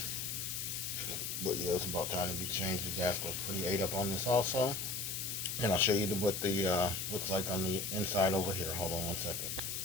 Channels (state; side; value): noise; left; hiss, 3 dB below the sound